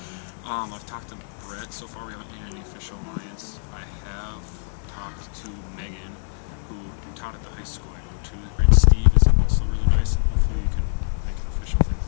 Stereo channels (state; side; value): silent; right; digital silence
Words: I've talked to Brett. So far we haven't made any official alliance. I have talked to Megan, who taught at the high school I go to, and Steve is also really nice, and hopefully we can make an official thing